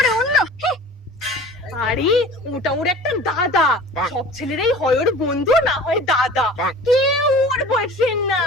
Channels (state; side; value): normal; both; correlation 0.42